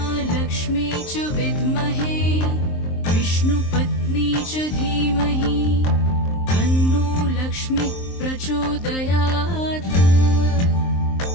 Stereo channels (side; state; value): right; late; 23 ms